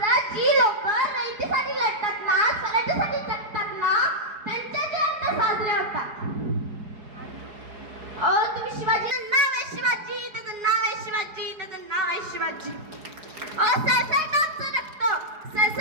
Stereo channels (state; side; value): late; left; 4.8 ms